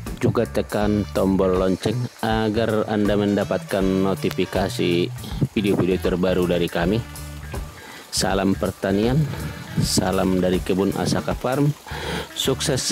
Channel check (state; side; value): identical; both; correlation 1.00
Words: juga tekan tombol lonceng agar Anda mendapatkan notifikasi video-video terbaru dari kami. Salam pertanian, salam dari Kebun Asaka Farm. Sukses